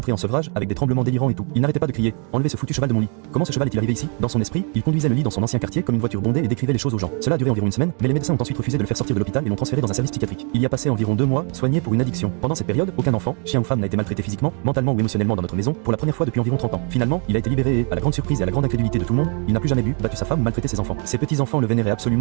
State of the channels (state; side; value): quieter; left; 38.1 dB